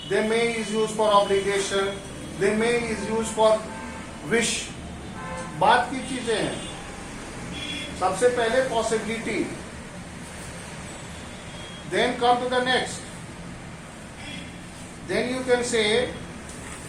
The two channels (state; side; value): identical; both; correlation 1.00